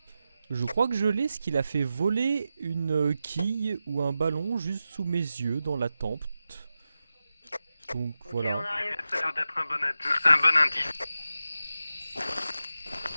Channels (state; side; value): inverted; both; correlation -0.91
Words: Je crois que je l'ai, ce qu'il a fait voler une quille ou un ballon juste sous mes yeux dans la tempe. Donc voilà. Ça a l'air d'être un bon indice.